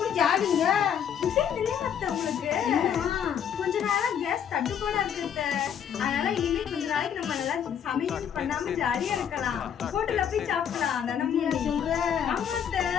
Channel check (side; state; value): right; quieter; 8.5 dB